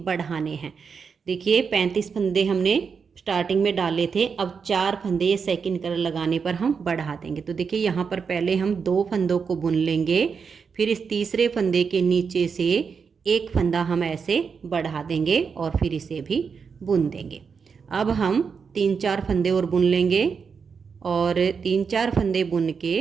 हैं। देखिए, 35 फंदे हमने स्टार्टिंग में डाले थे, अब 4 फंदे ये सेकंड कलर लगाने पर हम बढ़ा देंगे। तो देखिए, यहाँ पर पहले हम 2 फंदों को बुन लेंगे, फिर इस तीसरे फंदे के नीचे से एक फंदा हम ऐसे बढ़ा देंगे और फिर इसे भी बुन देंगे। अब हम 3-4 फंदे और बुन लेंगे और 3-4 फंदे बुन के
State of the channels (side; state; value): left; quieter; 5.9 dB